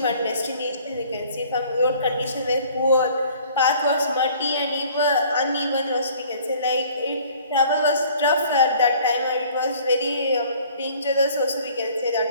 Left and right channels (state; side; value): inverted; both; correlation -0.53